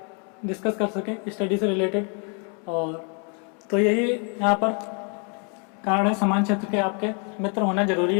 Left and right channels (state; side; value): quieter; right; 37.9 dB